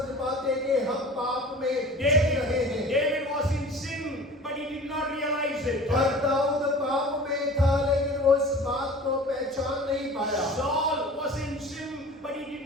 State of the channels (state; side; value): normal; both; correlation 0.41